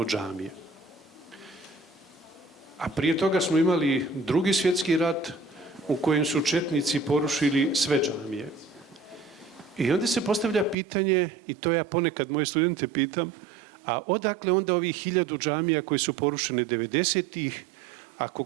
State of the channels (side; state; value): left; drops out; at 10.8 s